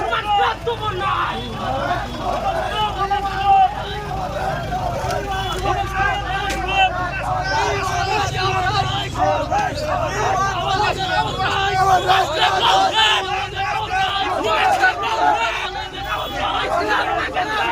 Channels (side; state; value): both; identical; correlation 1.00